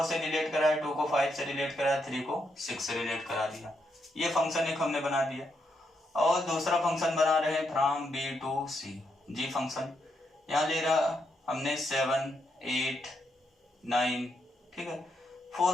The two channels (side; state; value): both; normal; correlation 0.80